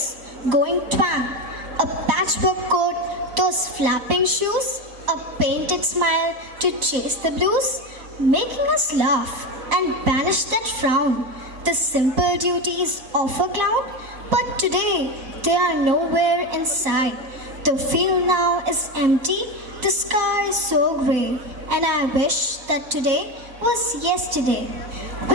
going twang, a patchwork coat, those flapping shoes, a painted smile to chase the blues, making us laugh and banish that frown, the simple duties of a clown. But today they are nowhere in sight. The field now is empty, the sky is so grey, and I wish that today was yesterday.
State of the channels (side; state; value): left; late; 3.6 ms